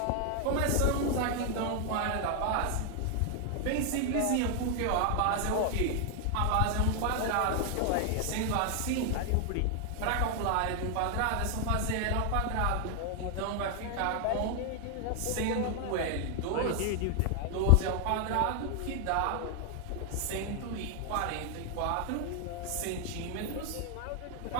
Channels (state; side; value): different; both; correlation 0.00